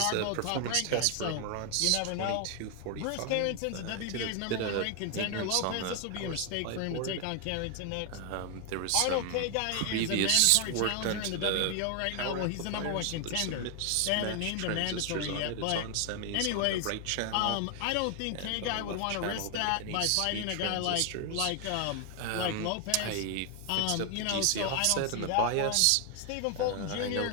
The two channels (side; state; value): both; different; correlation 0.00